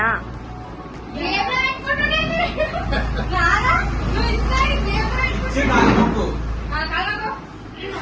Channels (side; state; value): both; identical; correlation 1.00